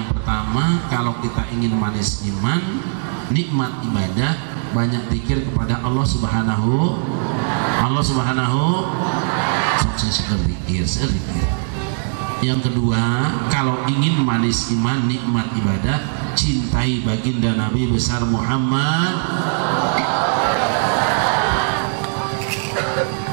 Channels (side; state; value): left; silent; 62 dB below the other